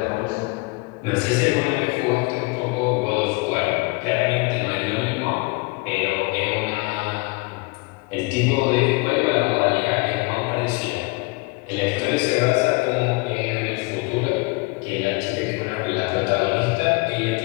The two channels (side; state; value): right; quieter; 26.9 dB